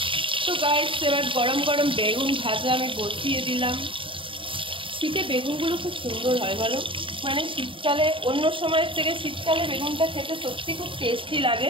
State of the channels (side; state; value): left; late; 0.25 ms